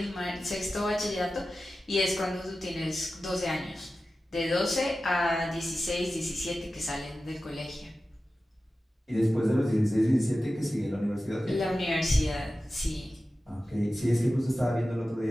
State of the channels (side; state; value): both; normal; correlation 0.94